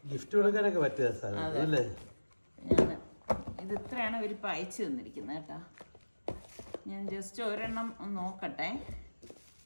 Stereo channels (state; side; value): inverted; both; correlation -1.00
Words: ഗിഫ്റ്റ് കൊടുക്കാനൊക്കെ പറ്റിയ ഇത് ഇത്രയാണ് ഇവരിപ്പോൾ അയച്ചു തന്നിരിക്കുന്നത് കേട്ടോ. ഞാൻ ജസ്റ്റ് ഒരെണ്ണം നോക്കട്ടെ,